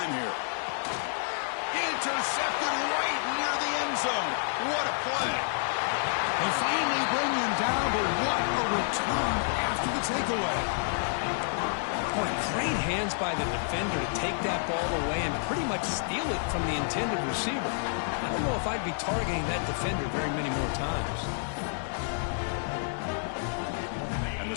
here. Intercepted right near the end zone. What a play. They finally bring him down, but what a return after the takeaway. Boy, great hands by the defender to take that ball away and pretty much steal it from the intended receiver. I don't know if I'd be targeting that defender very many more times. And the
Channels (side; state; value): right; silent; digital silence